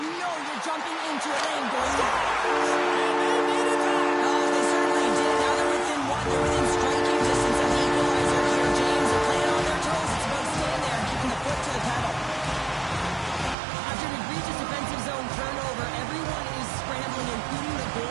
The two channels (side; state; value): left; drops out; at 13.6 s